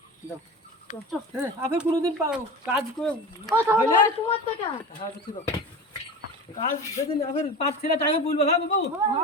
দাও। আপনি কোনোদিন কাজ করে হইলে তোমার টাকা হ্যাঁ, বুঝছি তো। কাজ যেদিন আপনি 5 ছেলে টাইমে বলবো, হ্যাঁ বাবু?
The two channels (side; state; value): both; normal; correlation 0.30